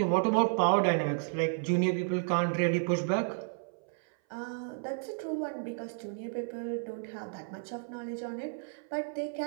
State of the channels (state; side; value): silent; left; 56 dB below the other